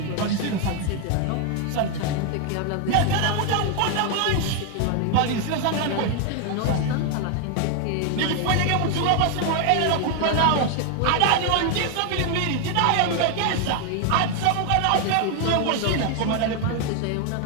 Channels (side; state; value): both; different; correlation 0.01